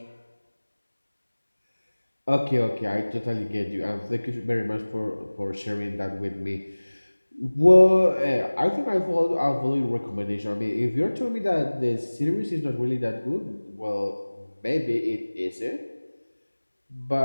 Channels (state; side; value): inverted; both; correlation -1.00